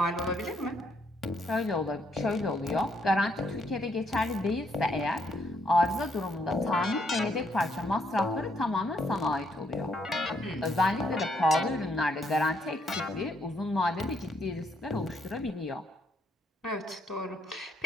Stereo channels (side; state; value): both; normal; correlation 0.72